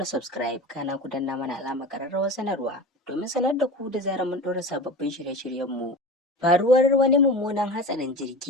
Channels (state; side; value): normal; both; correlation 0.31